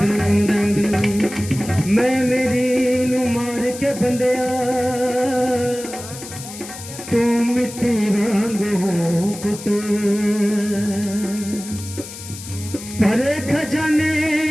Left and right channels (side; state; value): left; noise; hiss, 13 dB below the sound